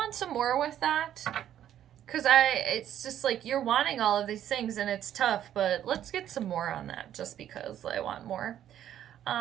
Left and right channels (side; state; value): left; quieter; 11.0 dB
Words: some more with that, because it's just like you're wanting all of these things and it's tough, but let's get some more on that just because I want more.